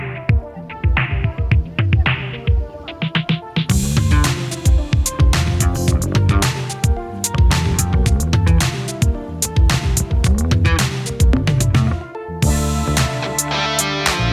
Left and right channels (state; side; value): identical; both; correlation 1.00